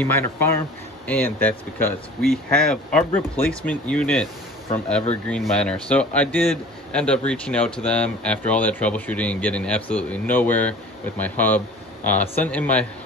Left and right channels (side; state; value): both; normal; correlation 0.44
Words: miner farm, and that's because we have our replacement unit from Evergreen Miner. So I did end up reaching out to them after all that troubleshooting and getting absolutely nowhere with my hub. Sent in my